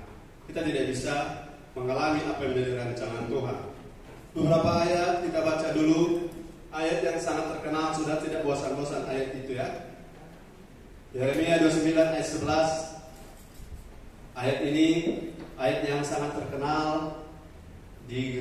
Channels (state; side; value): identical; both; correlation 1.00